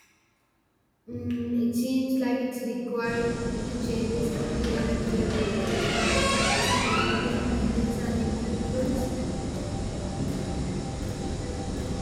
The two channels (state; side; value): identical; both; correlation 1.00